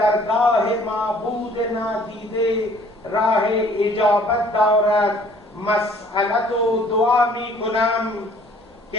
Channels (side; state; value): both; normal; correlation 0.56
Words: معبود نادیده راه اجابت دارد مسئلت و دعا می کنم